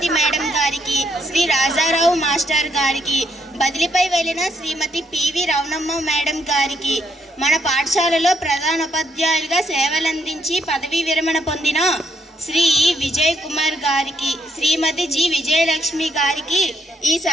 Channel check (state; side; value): normal; both; correlation 0.74